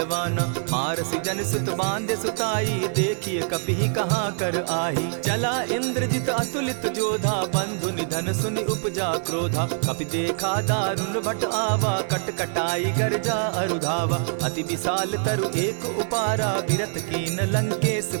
मारसी जन सुत बांधे सुताई, देखिए कपि कहाँ कर आही। चला इंद्रजित अतुलित जोधा, बंधु निधन सुनि उपजा क्रोधा। कपि देखा दारुण भट आवा, कट कटाई गर्जा अरुधावा। अति विशाल तरु एक उपारा, विरत कीन लंकेश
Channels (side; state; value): left; silent; digital silence